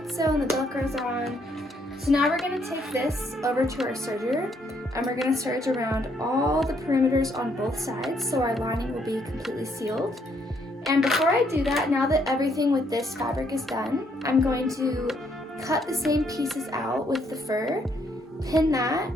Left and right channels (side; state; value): both; normal; correlation 0.71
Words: sewn, the Velcro's on. So now we're gonna take this over to our serger and we're gonna serge around all the perimeters on both sides so our lining will be completely sealed. And before I do that, now that everything with this fabric is done, I'm going to cut the same pieces out with the fur, pin that,